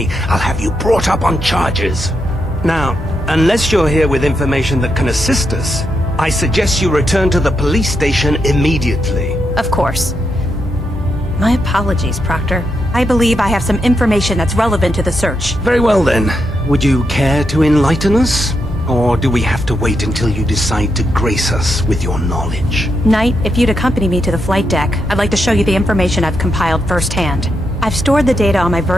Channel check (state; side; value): normal; both; correlation 0.82